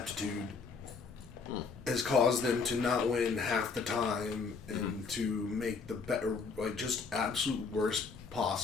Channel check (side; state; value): right; quieter; 4.9 dB